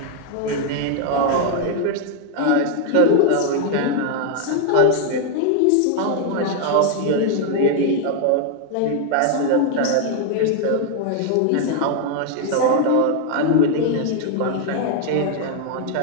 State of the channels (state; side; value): different; both; correlation 0.00